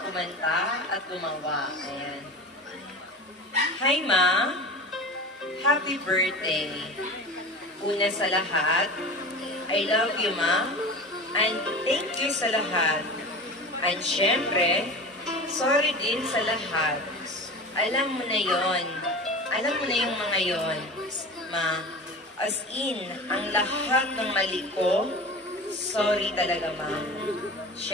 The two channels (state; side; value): normal; both; correlation 0.33